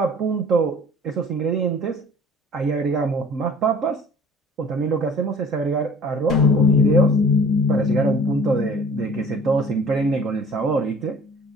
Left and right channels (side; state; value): both; normal; correlation 0.48